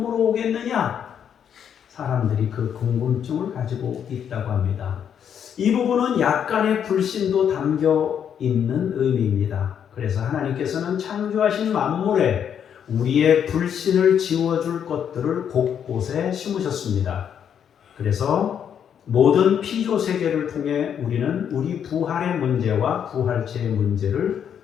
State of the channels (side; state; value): right; quieter; 8.4 dB